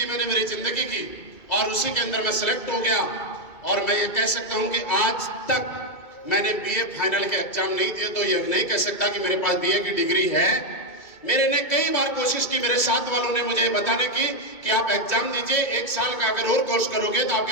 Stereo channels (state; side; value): late; right; 2.2 ms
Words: मैंने मेरी जिंदगी की और उसी के अंदर मैं सिलेक्ट हो गया। और मैं ये कह सकता हूं कि आज तक मैंने बीए फाइनल के एग्जाम नहीं दिए, तो ये नहीं कह सकता कि मेरे पास बीए की डिग्री है। मेरे ने कई बार कोशिश की, मेरे साथ वालों ने मुझे बताने की कि आप एग्जाम दीजिए, 1 साल का अगर और कोर्स करोगे तो